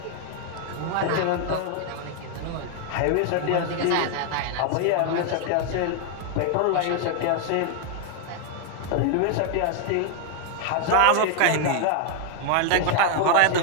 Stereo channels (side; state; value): both; different; correlation 0.00